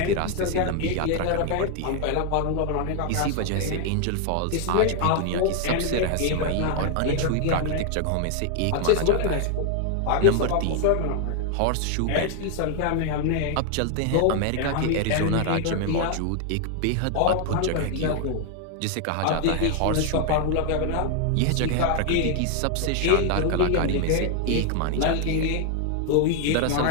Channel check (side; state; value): both; different; correlation 0.00